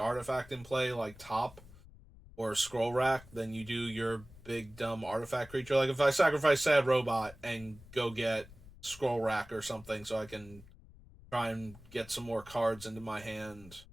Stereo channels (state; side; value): noise; left; rumble, 21 dB below the sound